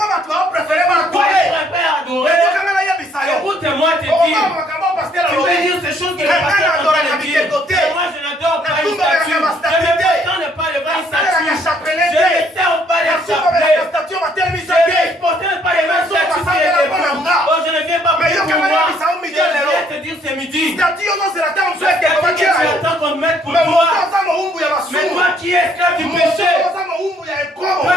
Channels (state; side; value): normal; both; correlation 0.65